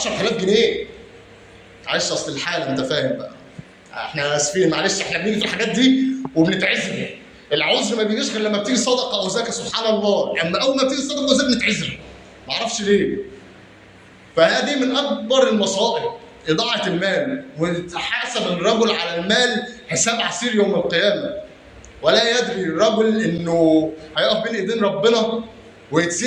جنيه. معلش اصل الحاله، انت فاهم بقى. احنا اسفين، معلش احنا بنيجي في الحاجات دي وبنتعذر. العذر ما بيجيش غير لما بتيجي صدقه او زكاه، سبحان الله. اما اول ما بتيجي صدقه او زكاه بنتعذر، ما اعرفش ليه. فهذه من اكبر المصائب، اضاعه المال. ويتحاسب الرجل على المال حساب عسير يوم القيامه، ولا يدري الرجل انه هيقف بين ايدين ربنا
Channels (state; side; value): identical; both; correlation 1.00